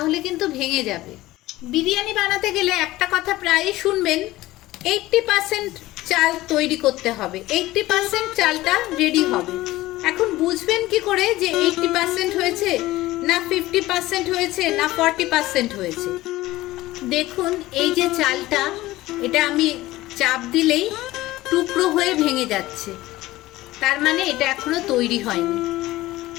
কিন্তু ভেঙে যাবে। বিরিয়ানি বানাতে গেলে একটা কথা প্রায়ই শুনবেন, 80% চাল তৈরি করতে হবে, 80% চালটা রেডি হবে। এখন বুঝবেন কি করে যে 80% হয়েছে না 50% হয়েছে না 40% হয়েছে? দেখুন এই যে চালটা, এটা আমি চাপ দিলেই টুকরো হয়ে ভেঙে যাচ্ছে, তার মানে এটা এখনো তৈরি হয়নি,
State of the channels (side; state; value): right; quieter; 17.4 dB